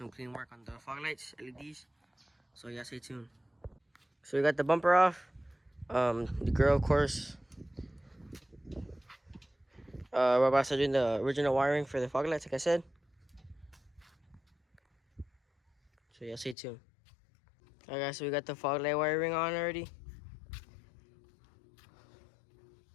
clean work on the fog lights, LEDs. So yeah, stay tuned. So we got the bumper off, the grill, of course. We're about to start doing the original wiring for the fog lights, like I said. So yeah, stay tuned. Alright guys, so we got the fog light wiring on already.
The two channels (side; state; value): right; drops out; at 16.6 s